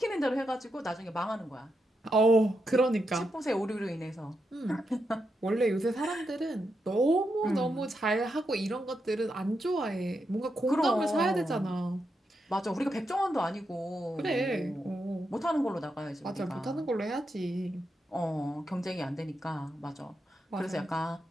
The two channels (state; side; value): normal; both; correlation 0.84